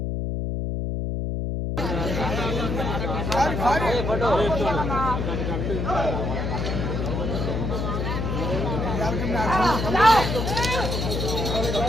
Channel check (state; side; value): noise; left; hum, 1 dB below the sound